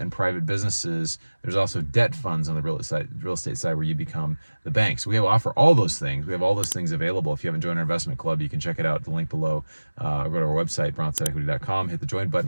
private businesses. There's also debt funds on the real estate side where you become the bank. So we offer all those things. We have all those things available. If you haven't joined our investment club, you can check it out. The link below. Go to our website, brownsideequity.com. Hit the join button.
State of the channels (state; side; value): inverted; both; correlation -1.00